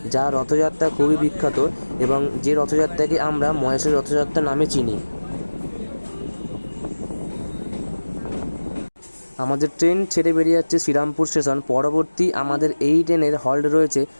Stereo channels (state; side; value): inverted; both; correlation -1.00